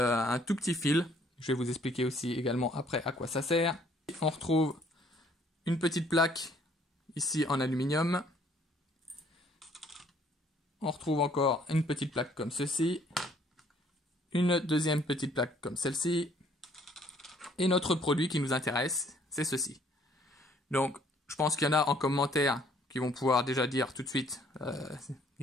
tout petit fil. Je vais vous expliquer aussi également après à quoi ça sert. On retrouve une petite plaque ici en aluminium. On retrouve encore une petite plaque comme ceci, une deuxième petite plaque comme celle-ci, Et notre produit qui nous intéresse, c'est ceci. Donc, je pense qu'il y en a en commentaire qui vont pouvoir déjà dire tout de suite,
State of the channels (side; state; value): both; normal; correlation 0.62